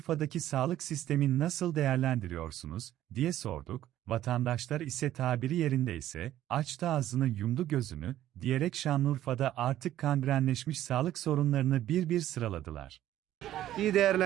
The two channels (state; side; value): quieter; left; 12.9 dB